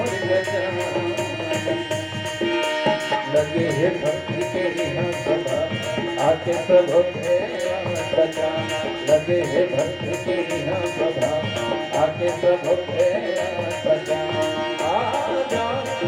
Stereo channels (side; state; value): both; identical; correlation 1.00